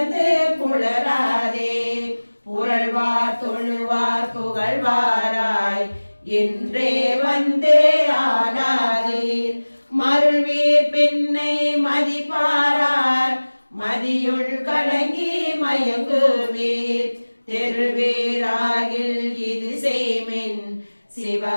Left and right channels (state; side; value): inverted; both; correlation -1.00